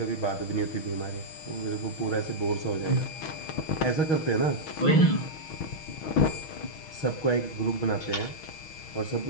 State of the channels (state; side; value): late; right; 6.3 ms